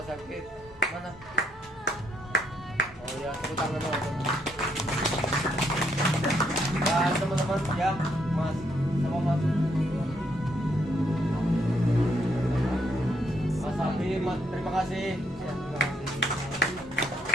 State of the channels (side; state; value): both; normal; correlation 0.74